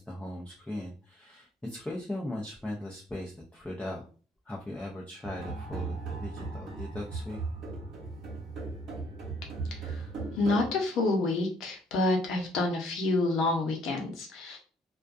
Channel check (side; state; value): both; normal; correlation 0.64